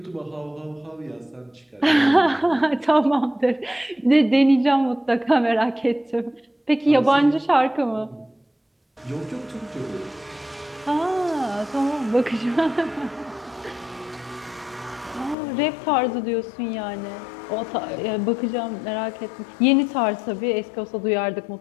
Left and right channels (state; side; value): drops out; right; at 15.4 s